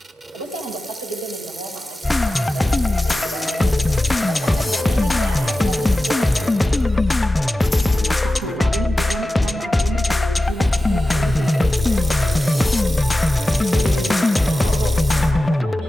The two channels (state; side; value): normal; both; correlation 0.94